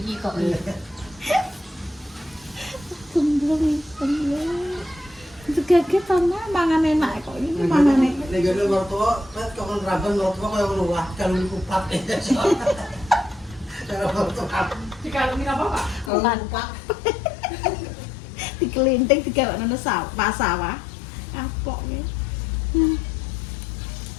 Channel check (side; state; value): right; drops out; at 16.1 s